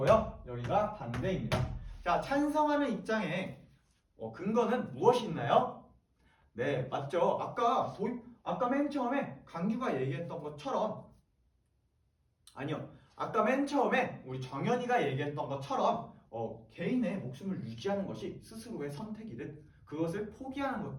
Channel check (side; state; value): both; identical; correlation 1.00